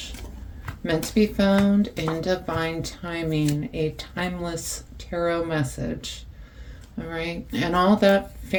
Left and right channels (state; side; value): identical; both; correlation 1.00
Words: meant to be found in divine timing, a timeless tarot message. All right, and all that